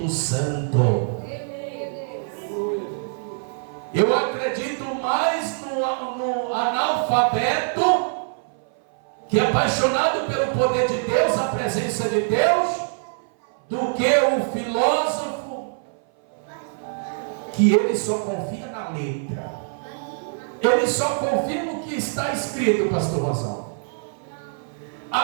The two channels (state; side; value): silent; left; 57 dB below the other